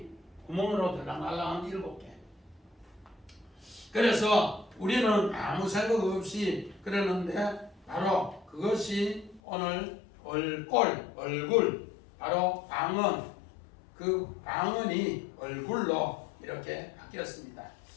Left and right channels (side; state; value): right; drops out; at 9.4 s